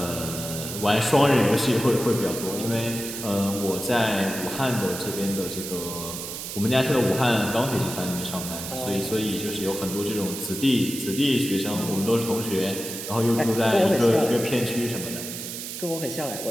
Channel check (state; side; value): noise; right; hiss, 8 dB below the sound